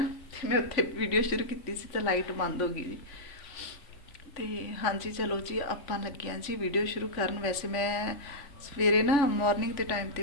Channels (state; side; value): late; right; 3.5 ms